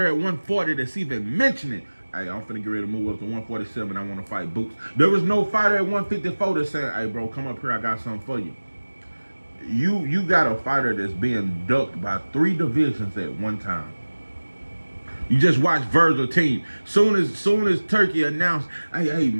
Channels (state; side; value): inverted; both; correlation -1.00